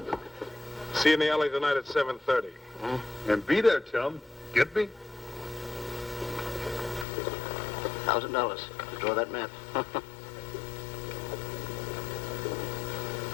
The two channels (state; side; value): drops out; right; at 7.1 s